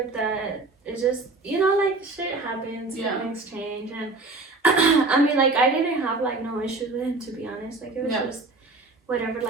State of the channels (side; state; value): left; quieter; 3.4 dB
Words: that. It's just, you know, like shit happens, things change, and I mean, like I didn't have like no issues with him, to be honest. Like it was just whatever,